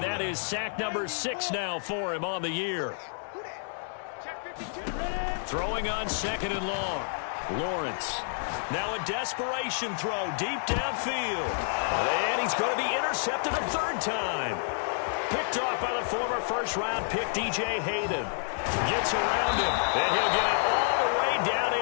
that is sack number 6 now for him on the year. Throwing on 2nd and long. Lawrence. Now a desperation throw deep downfield. And he's going to be intercepted a 3rd time. Picked off by the former first-round pick, DJ Hayden. Gets around him, and he'll get it all the way down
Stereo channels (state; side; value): silent; right; digital silence